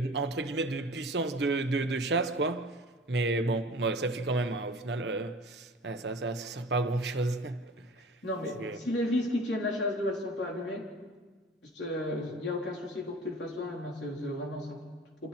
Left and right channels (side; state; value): both; normal; correlation 0.42